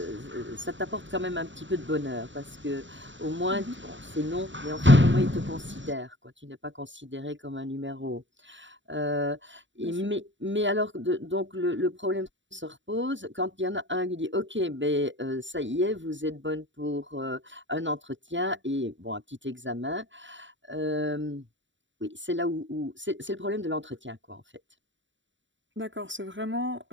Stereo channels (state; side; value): late; left; 0.54 ms